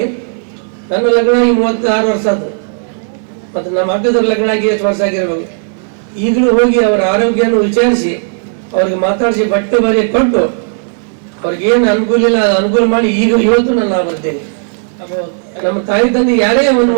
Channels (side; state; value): left; silent; 71 dB below the other